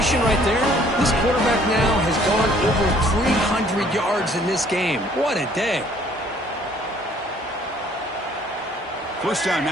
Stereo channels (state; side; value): normal; both; correlation 0.59